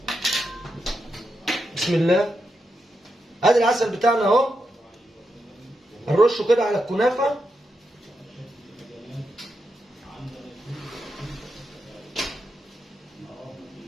بسم الله، ادي العسل بتاعنا اهو، هنرشه كده على الكنافه.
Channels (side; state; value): both; normal; correlation 0.85